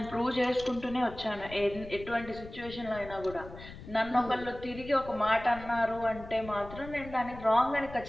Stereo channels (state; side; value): noise; left; rumble, 15 dB below the sound